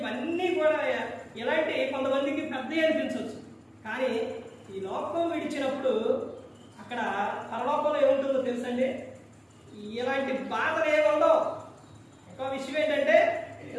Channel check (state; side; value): identical; both; correlation 1.00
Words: కూడా ఇలాంటి కొంతమందికి పెద్ద అనిపించవచ్చు. కానీ ఈ లోకం విడిచినప్పుడు అక్కడ పరలోకంలో ఏముంటుందో తెలుసండి, ఇలాంటి బాధలు ఏముండవు. ఇంకో విషయం ఏంటంటే